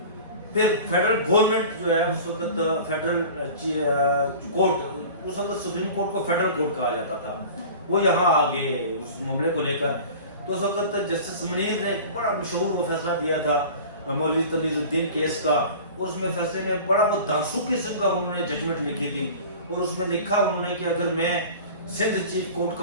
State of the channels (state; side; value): inverted; both; correlation -0.39